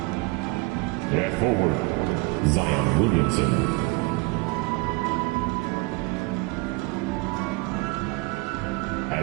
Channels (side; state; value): left; quieter; 25.4 dB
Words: At forward, Zion Williamson.